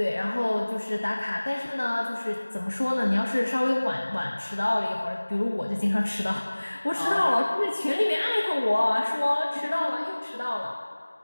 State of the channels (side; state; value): both; inverted; correlation -1.00